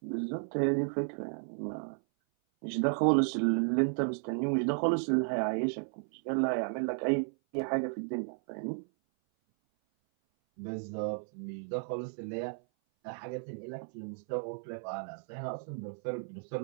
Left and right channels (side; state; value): left; silent; 55 dB below the other